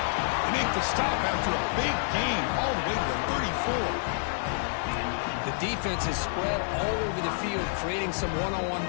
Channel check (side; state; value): right; silent; digital silence